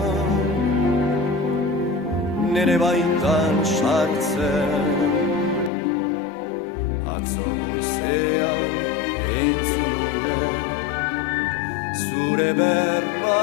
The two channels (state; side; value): drops out; right; at 5.7 s